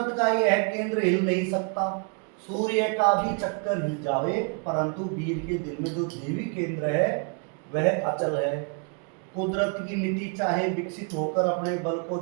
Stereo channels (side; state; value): left; quieter; 38.7 dB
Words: का यह केंद्र हिल नहीं सकता, सूर्य का भी चक्कर हिल जावे, परंतु वीर के दिल में जो देवी केंद्र है वह अचल है। कुदरत की नीति चाहे विकसित होकर अपने बल को